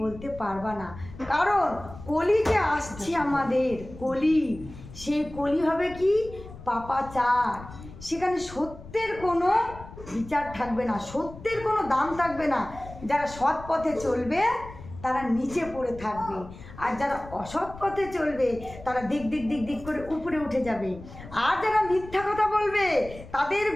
বলতে পারবা না, কারণ কলি যে আসছে আমাদের কলি, সেই কলি হবে কি পাপাচার। সেখানে সত্যের কোনো বিচার থাকবে না, সত্যের কোনো দাম থাকবে না। যারা সৎ পথে চলবে তারা নিচে পড়ে থাকবে, আর যারা অসৎ পথে চলবে তারা দিক দিক দিক দিক করে উপরে উঠে যাবে। আর যারা মিথ্যা কথা বলবে তাদের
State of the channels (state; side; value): noise; left; rumble, 16 dB below the sound